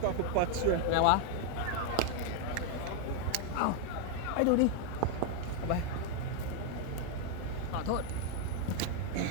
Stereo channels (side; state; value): both; different; correlation 0.01